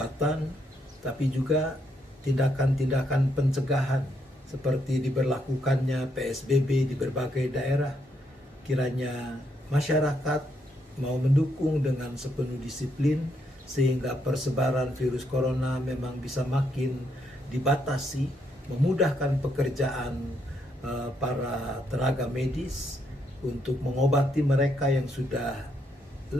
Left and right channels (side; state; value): both; normal; correlation 0.76